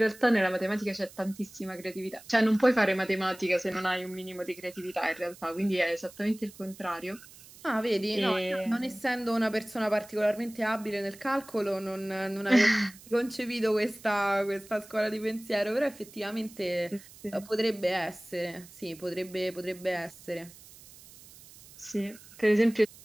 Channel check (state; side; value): noise; right; hiss, 20 dB below the sound